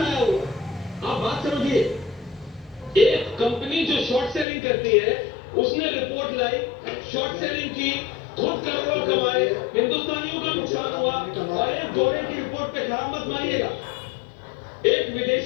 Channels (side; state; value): right; drops out; at 4.5 s